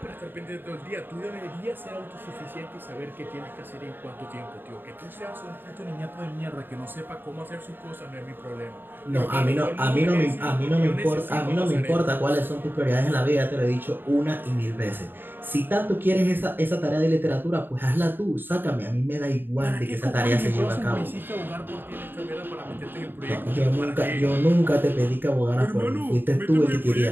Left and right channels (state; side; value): late; left; 0.095 ms